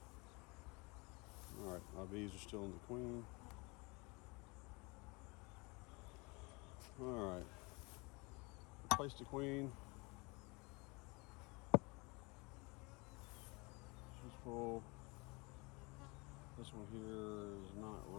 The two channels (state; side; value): quieter; right; 27.3 dB